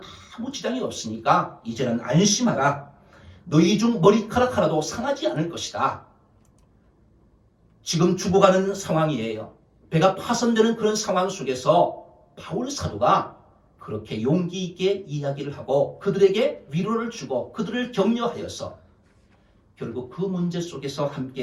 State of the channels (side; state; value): both; identical; correlation 1.00